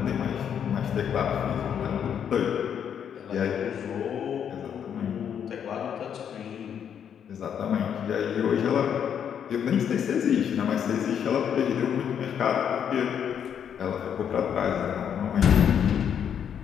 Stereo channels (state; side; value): quieter; right; 8.4 dB